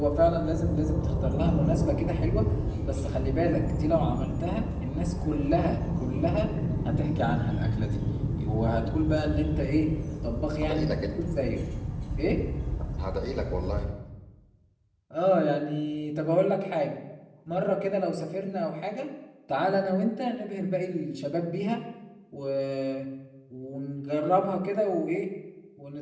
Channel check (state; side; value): identical; both; correlation 1.00